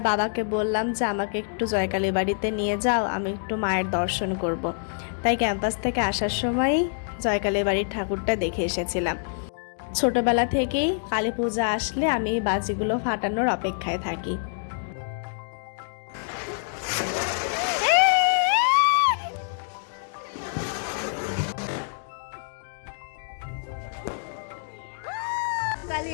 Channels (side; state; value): right; silent; digital silence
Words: বাবাকে বললাম যে আমাকে একটু জয়কালী বাড়িতে নিয়ে যাও, আমি একটু মায়ের দর্শন করব। তাই ক্যাম্পাস থেকে আসার সময়ই জয়কালী বাড়ির ঠাকুরটা দেখে এসেছিলাম। ছোটবেলা থেকেই কালী পূজা আসলে আমি এই বাজিগুলো ফাটানোর অপেক্ষায় থাকি।